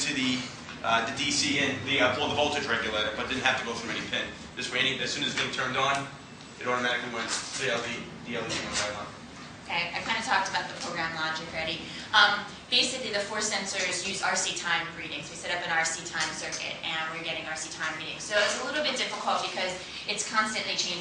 the DC and the voltage regulator, but didn't have to go through any pin. This way, as soon as the thing turned on, it automatically went. The LED went right on. Okay, I kind of talked about the program logic already. Basically, the force sensors use RC time readings. We set up an RC time circuit, and we're getting RC time readings. So it's a little bit difficult because it's constantly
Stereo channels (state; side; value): identical; both; correlation 1.00